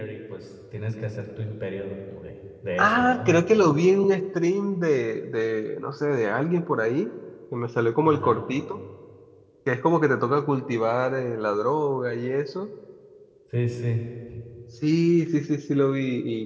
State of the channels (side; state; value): both; identical; correlation 1.00